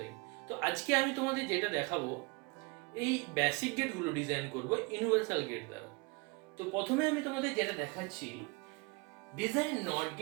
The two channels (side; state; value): left; quieter; 27.5 dB